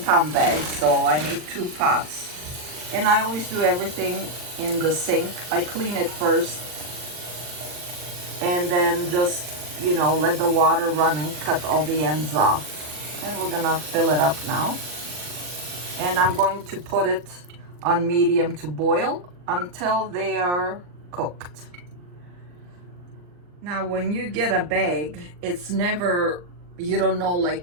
bag. So I need 2 pots. And I always do everything in the sink. I clean it first and then just, let the water run and cut all the ends off. And we're gonna fill it up now. And I'm going to put it on medium to boil until they are cooked. Now, when you get a bag, it's never, you don't know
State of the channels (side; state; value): left; late; 40 ms